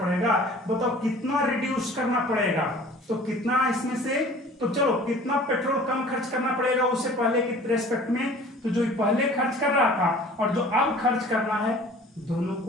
बताओ कितना रिड्यूस करना पड़ेगा? तो कितना इसमें से, तो चलो कितना पेट्रोल कम खर्च करना पड़ेगा उससे पहले के रेस्पेक्ट में? तो जो पहले खर्च कर रहा था और जो अब खर्च करना है, दोनों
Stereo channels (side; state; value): both; normal; correlation 0.47